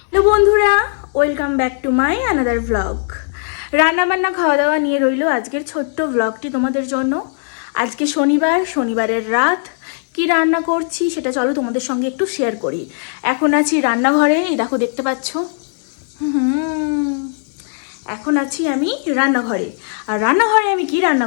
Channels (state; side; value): silent; right; digital silence